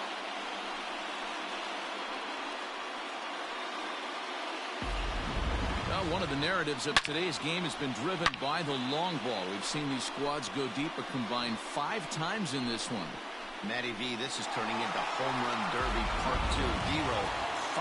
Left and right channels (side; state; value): both; identical; correlation 1.00